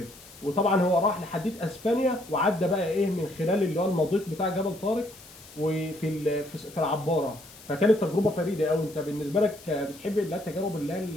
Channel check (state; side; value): noise; left; hiss, 20 dB below the sound